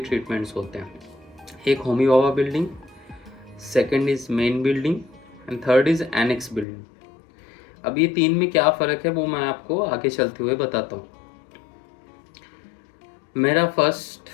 होते हैं। एक Homi Bhabha building, second is main building and third is annex building. अब ये 3 में क्या फ़र्क है वो मैं आपको आगे चलते हुए बताता हूँ। मेरा फर्स्ट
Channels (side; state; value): right; drops out; at 6.7 s